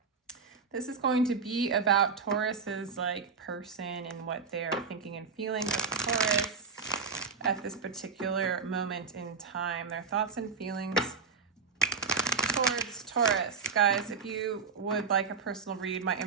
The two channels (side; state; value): left; quieter; 5.2 dB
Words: This is going to be about Taurus's person and what they're thinking and feeling with Taurus at this particular moment in time. Their thoughts and feelings towards Taurus. Guys, if you would like a personal read, my